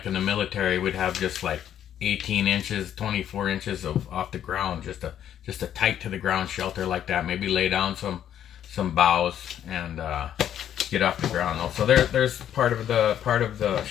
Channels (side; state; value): right; quieter; 10.3 dB